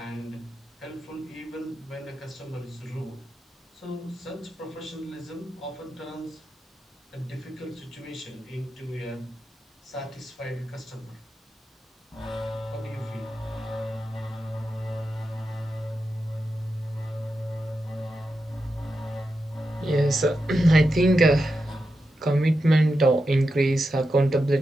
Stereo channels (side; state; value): both; normal; correlation 0.88